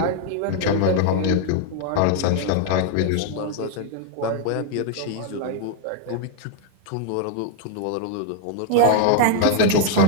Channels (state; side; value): different; both; correlation 0.00